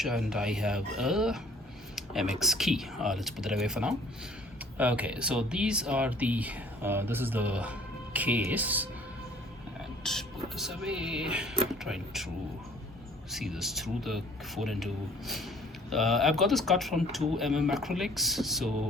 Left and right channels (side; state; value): both; normal; correlation 0.54